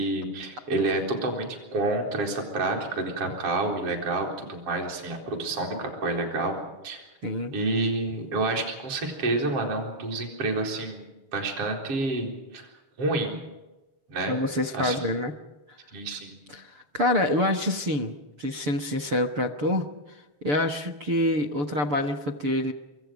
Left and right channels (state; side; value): late; left; 6.9 ms